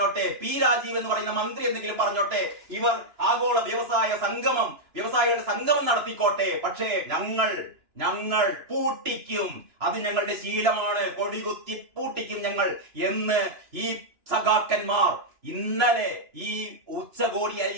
രാജീവ് എന്ന് പറയുന്ന മന്ത്രി എന്തെങ്കിലും പറഞ്ഞോട്ടെ, ഇവർ ആഗോള വ്യവസായികളുടെ സംഗമം നടത്തിക്കോട്ടെ, പക്ഷേ ഞങ്ങൾ പൂട്ടിക്കും. അത് ഞങ്ങളുടെ ശീലമാണ്, കൊടികുത്തി പൂട്ടിക്കും ഞങ്ങൾ എന്ന് ഈ സഖാക്കന്മാർ ഇന്നലെ ഈ ഉച്ചകോടി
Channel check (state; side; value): late; left; 2.9 ms